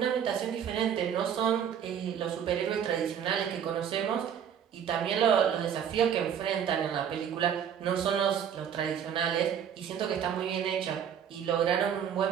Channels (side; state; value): left; quieter; 8.6 dB